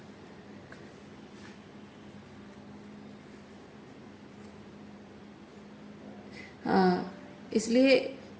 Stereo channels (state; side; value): identical; both; correlation 1.00